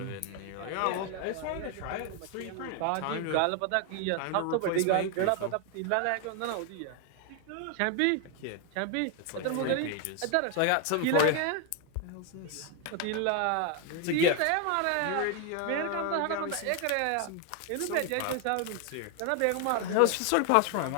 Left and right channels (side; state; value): both; different; correlation 0.01